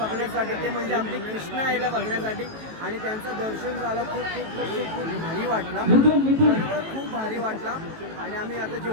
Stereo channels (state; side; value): late; left; 18 ms